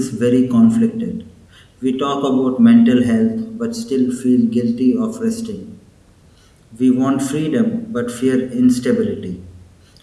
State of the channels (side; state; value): both; identical; correlation 1.00